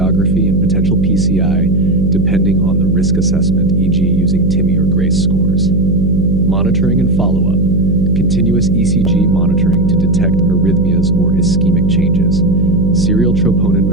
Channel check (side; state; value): right; noise; hum, 1 dB below the sound